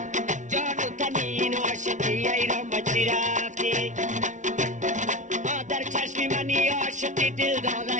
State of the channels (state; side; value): late; left; 0.36 ms